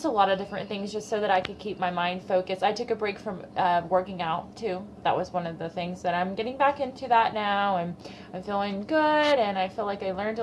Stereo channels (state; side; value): identical; both; correlation 1.00